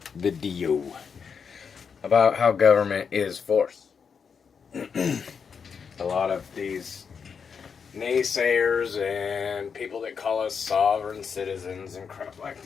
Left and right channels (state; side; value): quieter; right; 6.3 dB